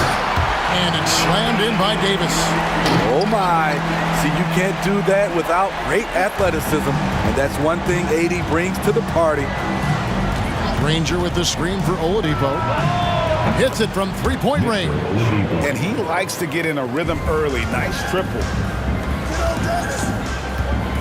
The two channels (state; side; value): identical; both; correlation 1.00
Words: And it's slammed in by Davis. Oh my. See, you can't do that without great athleticism. And that's one thing AD brings to the party. Ranger with the screen for Oladipo. Hits it from three-point range. And he likes to get in a rhythm early. Nice triple.